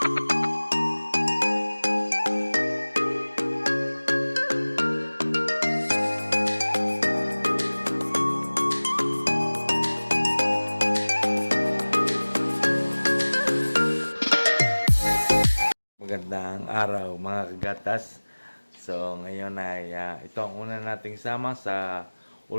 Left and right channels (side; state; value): both; inverted; correlation -1.00